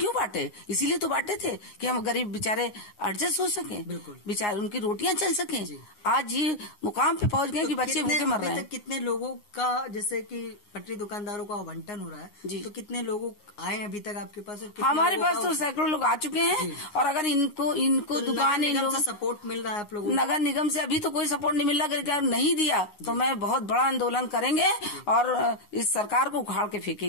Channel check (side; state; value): right; late; 9.6 ms